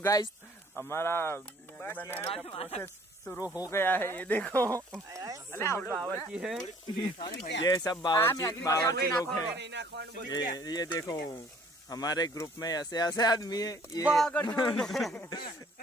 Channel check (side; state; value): both; normal; correlation 0.57